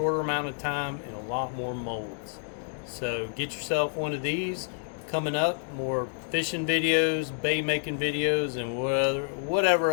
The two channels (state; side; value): silent; right; digital silence